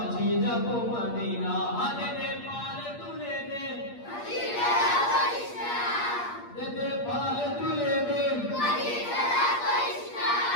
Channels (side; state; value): right; late; 8.5 ms